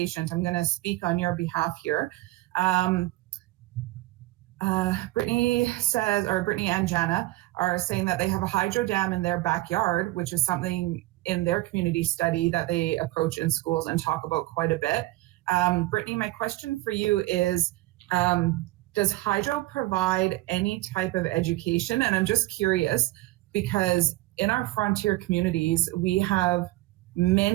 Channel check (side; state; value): left; quieter; 18.9 dB